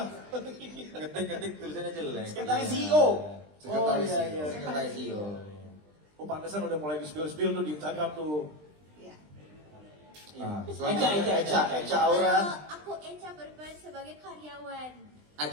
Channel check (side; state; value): left; late; 20 ms